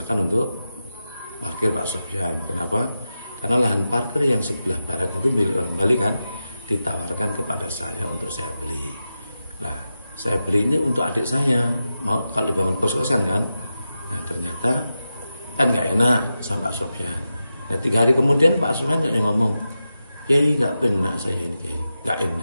untuk parkir Pak Sofyan. Kenapa? Karena lahan parkir yang sebelah barat itu milik orang Bali kan, ditawarkan kepada saya untuk saya beli. Nah, saya beli ini untuk adik saya, mau kalau dibangun kos-kosan kan. Nah, ternyata kan nggak enak sama Pak Sofyan. Nah, 3 hari kemudian Pak Sofyan ngomong, Kiai nggak benar saya ini, Kiai nggak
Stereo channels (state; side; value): inverted; both; correlation -0.91